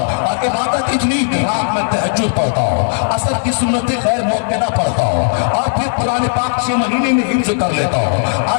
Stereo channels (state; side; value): silent; right; digital silence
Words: और इबादत इतनी रात में तहज्जुद पढ़ता हो, असर की सुन्नतें गैर मौक़िदा पढ़ता हो, और फिर कुरान पाक 6 महीने में हिफ्ज़ कर लेता हो,